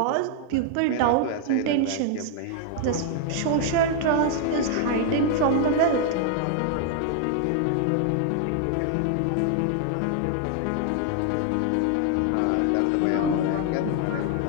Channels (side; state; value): both; different; correlation 0.00